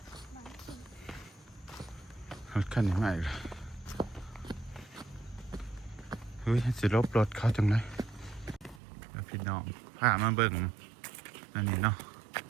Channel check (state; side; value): drops out; left; at 8.8 s